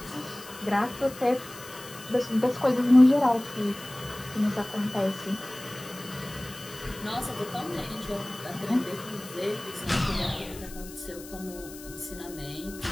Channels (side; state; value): left; noise; hiss, 16 dB below the sound